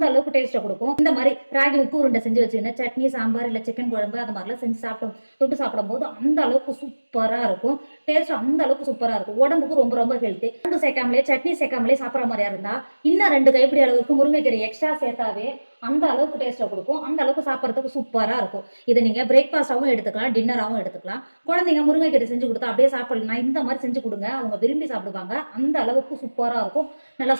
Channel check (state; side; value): inverted; both; correlation -1.00